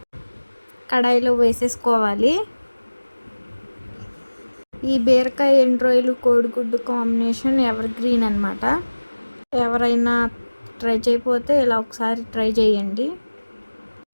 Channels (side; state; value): both; inverted; correlation -1.00